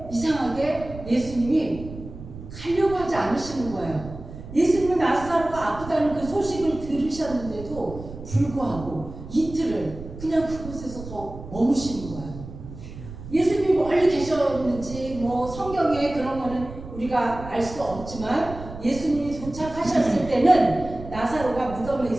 이상하게 예수님이 가려고 하지 않으시는 거예요. 예수님은 나사로가 아프다는 그 소식을 들으셨는데도 불구하고 이틀을 그냥 그곳에서 더 머무시는 거예요. 예수님이 멀리 계셨는지 뭐 성경에 그런 거는 우리가 알 수 없지만, 예수님이 도착하셨을 때는 나사로가 무덤에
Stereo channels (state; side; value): noise; right; rumble, 13 dB below the sound